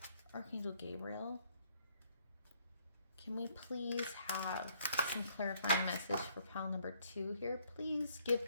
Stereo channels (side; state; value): both; inverted; correlation -0.66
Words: Archangel Gabriel, can we please have some clarifying message for pile number 2 here? Please give